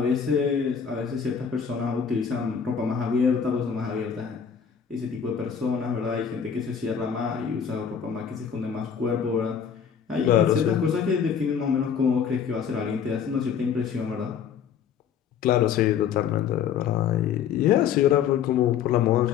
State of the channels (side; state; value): right; quieter; 7.6 dB